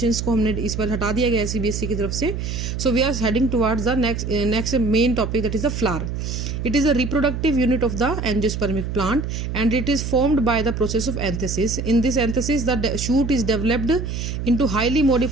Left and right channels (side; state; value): right; noise; hum, 4 dB below the sound